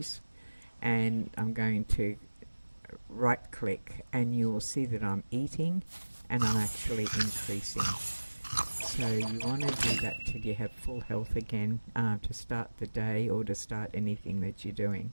and I'm going to right click, and you'll see that I'm eating and I'm actually increasing. So you want to do that till you have full health again, to start the day or to start anything that you're doing.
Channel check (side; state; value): both; inverted; correlation -1.00